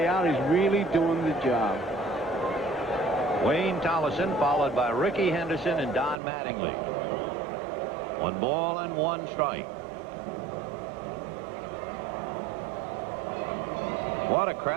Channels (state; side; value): drops out; left; at 6.2 s